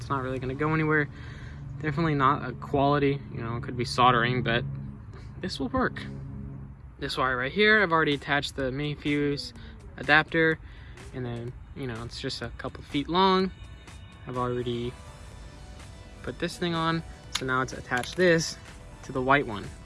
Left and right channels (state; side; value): identical; both; correlation 1.00